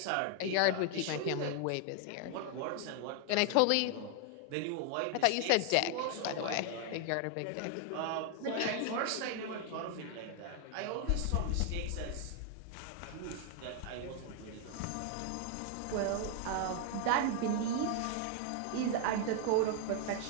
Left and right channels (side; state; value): both; different; correlation 0.00